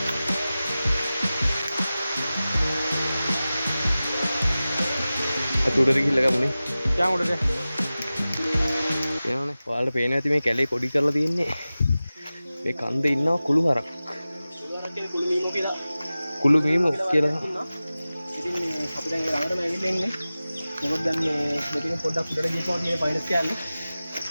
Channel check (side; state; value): both; inverted; correlation -0.96